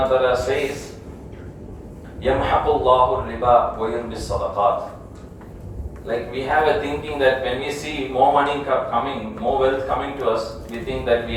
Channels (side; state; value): both; identical; correlation 1.00